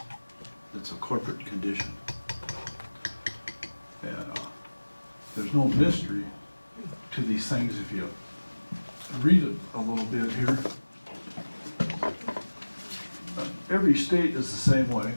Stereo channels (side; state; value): both; inverted; correlation -1.00